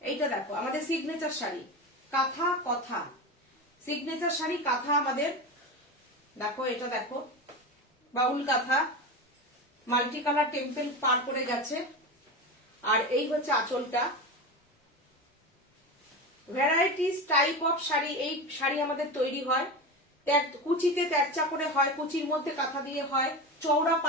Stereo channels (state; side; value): normal; both; correlation 0.23